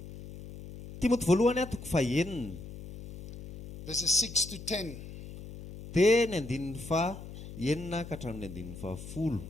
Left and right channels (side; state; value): left; noise; hum, 13 dB below the sound